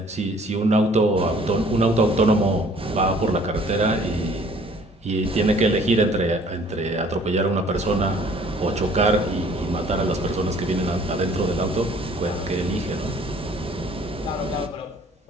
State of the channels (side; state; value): both; normal; correlation 0.56